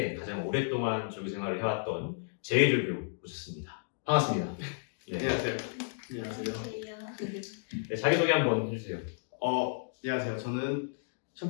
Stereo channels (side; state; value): right; silent; digital silence